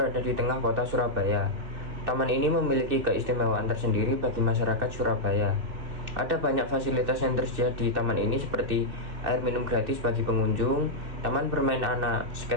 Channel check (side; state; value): left; late; 2.7 ms